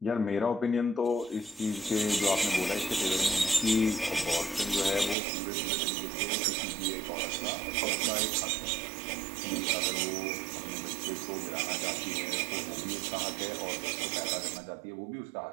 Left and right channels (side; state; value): left; drops out; at 5.2 s